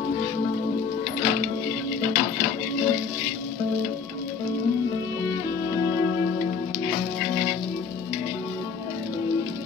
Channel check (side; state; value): right; quieter; 5.7 dB